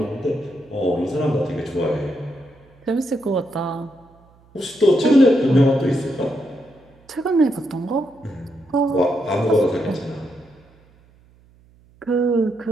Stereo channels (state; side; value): noise; right; hum, 29 dB below the sound